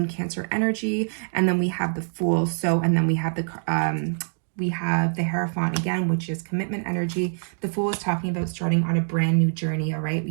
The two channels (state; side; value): silent; left; digital silence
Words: Cancer energy, and then we have the Fool. So, and then we have the Hierophant again, which is commitment energy. The Fool is talking about starting on a brand new journey, all right?